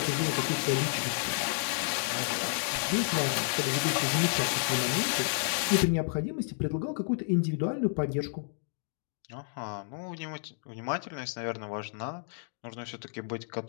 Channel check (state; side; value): silent; right; digital silence